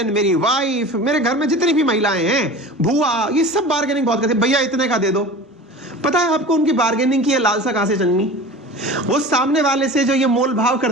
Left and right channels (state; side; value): normal; both; correlation 0.36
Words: मेरी वाइफ, मेरे घर में जितनी भी महिलाएं हैं, बुआ, ये सब बार्गेनिंग बहुत करते हैं। भैया इतने का दे दो। पता है आपको उनकी बार्गेनिंग की लालसा कहां से जन्मी? वो सामने वाले से जो ये मोल भाव